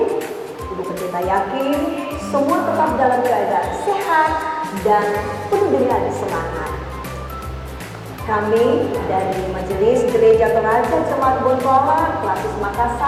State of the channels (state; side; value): identical; both; correlation 1.00